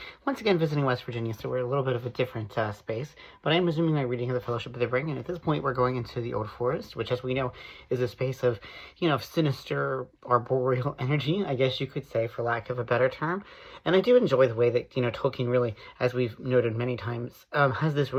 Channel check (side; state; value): both; identical; correlation 1.00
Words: once again visiting West Virginia, so we're a little bit of a different space, but I'm resuming my reading of the Fellowship of the Ring, and at this point we're going into the Old Forest, which as we know is a space of, sinister arboreal energy, I guess you could say, for lack of a better term. And I do enjoy the way that, Tolkien really, as we've noted many times, has this